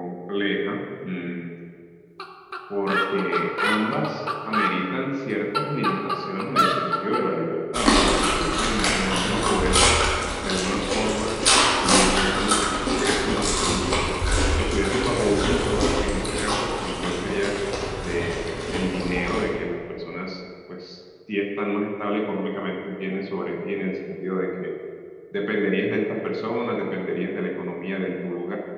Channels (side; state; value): both; identical; correlation 1.00